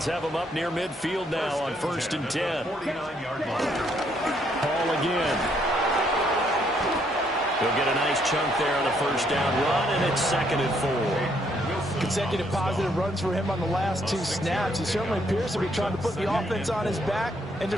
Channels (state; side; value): normal; both; correlation 0.70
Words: have him up near midfield now on 1st and 10. Paul again. He'll get a nice chunk there on the first down run, and it's 2nd and 4. Consecutive positive runs for him on the last 2 snaps. He certainly appears to be trying to put the offense on his back and